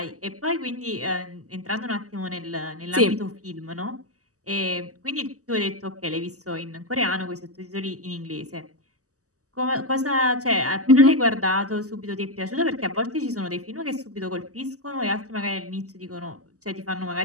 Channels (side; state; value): left; late; 0.66 ms